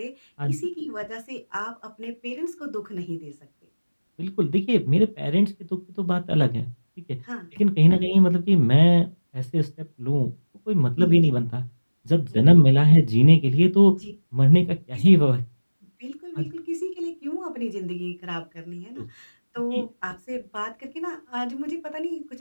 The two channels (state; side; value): inverted; both; correlation -1.00